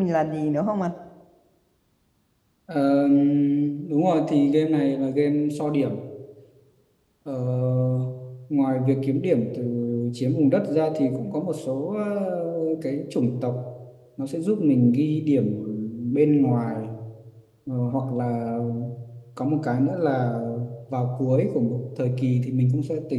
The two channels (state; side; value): identical; both; correlation 1.00